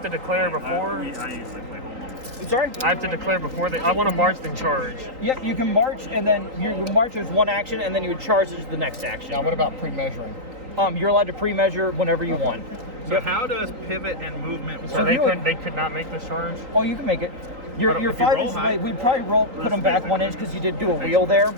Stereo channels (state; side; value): late; left; 3.9 ms